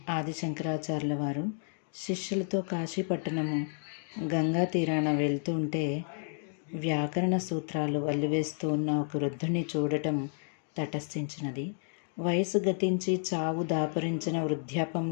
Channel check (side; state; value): right; silent; 57 dB below the other